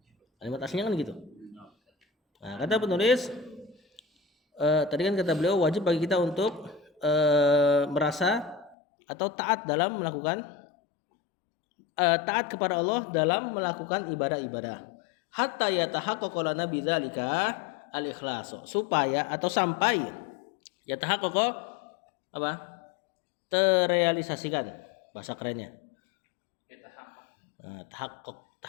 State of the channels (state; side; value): drops out; right; at 8.8 s